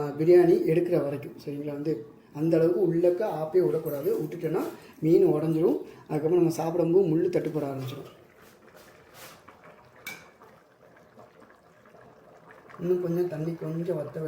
பிரியாணி எடுக்கிற வரைக்கும் சரிங்களா வந்து அந்தளவுக்கு உள்ளக்க ஆப்பே விடக்கூடாது. விட்டுட்டோன்னா மீன் உடஞ்சிரும். அதுக்கப்புறம் நம்ம சாப்பிடும்போது முள் தட்டுப்பட ஆரம்பிச்சிடும். இன்னும் கொஞ்சம் தண்ணி கொஞ்சம் வற்ற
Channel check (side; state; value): both; identical; correlation 1.00